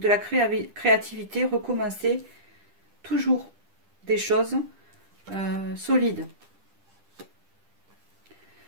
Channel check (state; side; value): late; left; 10 ms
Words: la créativité, recommencer toujours des choses solides.